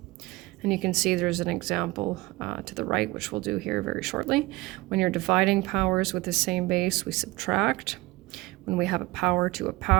And you can see there's an example to the right, which we'll do here very shortly. When you're dividing powers with the same base, we subtract. When we have a power to a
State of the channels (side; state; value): left; quieter; 20.9 dB